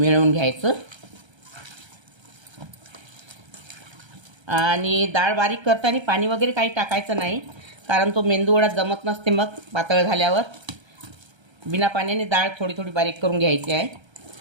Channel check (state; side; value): late; left; 1.3 ms